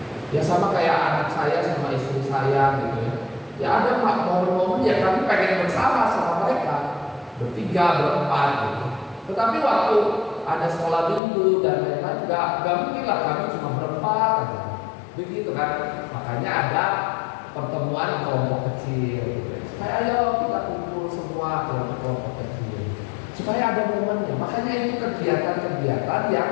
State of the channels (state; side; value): drops out; right; at 11.2 s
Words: Ya sama kayak anak saya sama istri saya gitu ya. Ya ada momen-momen ya kami pengen bersama sama mereka, bertiga, berempat gitu. Tetapi waktu ada sekolah minggu dan lain-lain, gak mungkin lah kami cuma berempat aja. Begitu kan. Makanya ada pertemuan kelompok kecil gitu. Supaya ayo kita kumpul semua kelompok kecil, supaya ada momennya. Makanya itu kegiatan-kegiatan yang